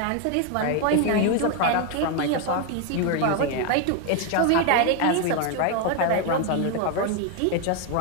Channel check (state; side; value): different; both; correlation 0.01